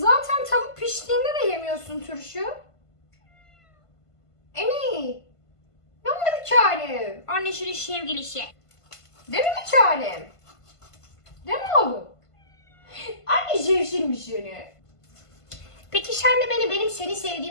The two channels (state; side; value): late; right; 1.5 ms